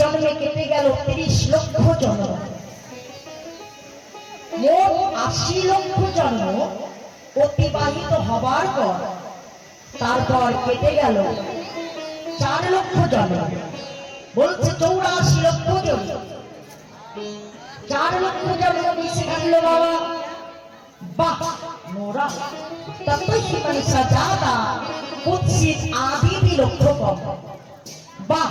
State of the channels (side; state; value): both; identical; correlation 1.00